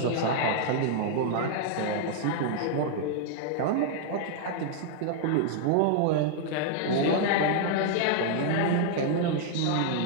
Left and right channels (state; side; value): different; both; correlation -0.01